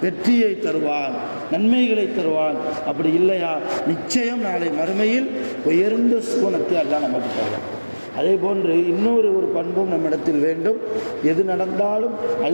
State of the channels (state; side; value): inverted; both; correlation -1.00